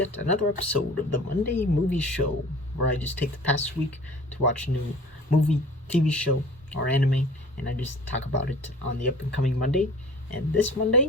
another episode of the Monday Movie Show, where I just take the past week to watch a new movie, TV show, or anime, and I just talk about it on the up and coming Monday. And this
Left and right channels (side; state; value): both; normal; correlation 0.44